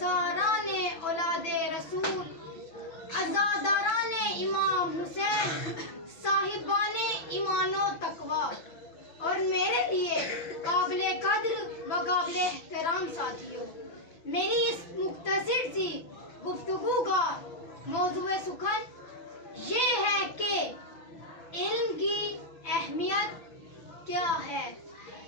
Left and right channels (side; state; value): right; late; 6.0 ms